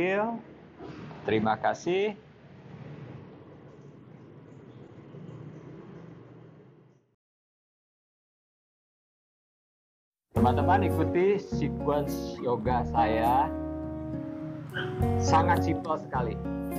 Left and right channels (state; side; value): identical; both; correlation 1.00